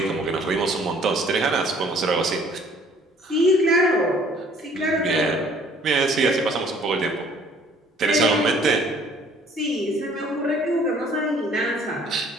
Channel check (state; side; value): normal; both; correlation 0.57